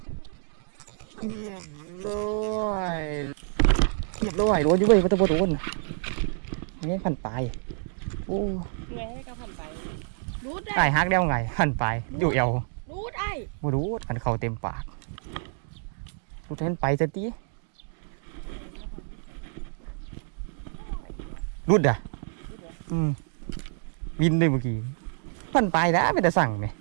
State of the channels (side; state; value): left; silent; 59 dB below the other